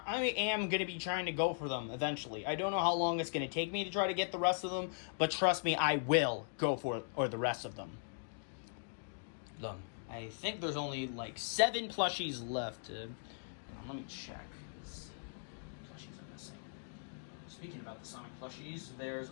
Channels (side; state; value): right; silent; digital silence